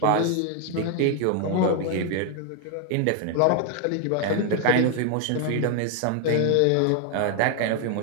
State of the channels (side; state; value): both; different; correlation 0.00